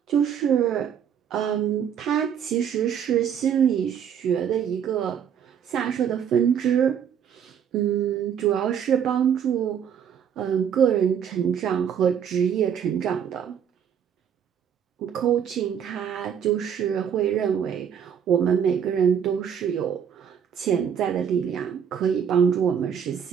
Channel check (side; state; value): left; quieter; 8.3 dB